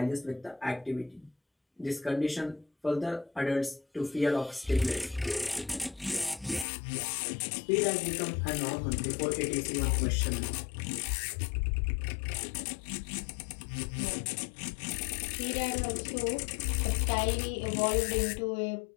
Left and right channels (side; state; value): right; drops out; at 6.7 s